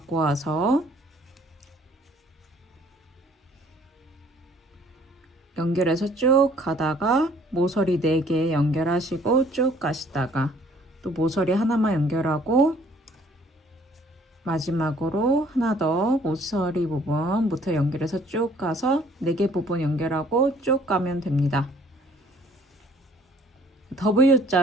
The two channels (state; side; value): normal; both; correlation 0.58